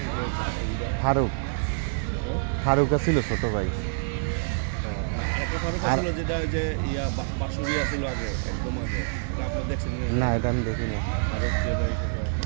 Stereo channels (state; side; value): silent; left; digital silence